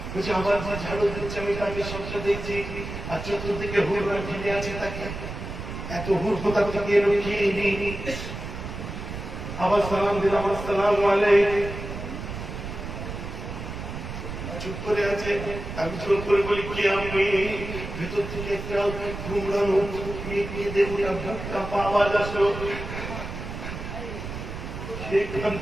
বলছে আবার যে ঝাড়ু দিচ্ছে আমি তাকে সবটা দেখছি, আর চতুর্দিকে হুড়রা ঘিরে আছে তাকে। এত হুড় কোথা থেকে এলো খেয়ে নেই। আবার সালাম দিলাম আসসালামু আলাইকুম। চুপ করে আছে। আমি জোর করে বলি কি আপনি? ভেতর থেকে একটা ঘুমড়ানো মেয়ে দেখুন বুকটা আওয়াজ আসলো।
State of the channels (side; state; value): right; noise; rumble, 8 dB below the sound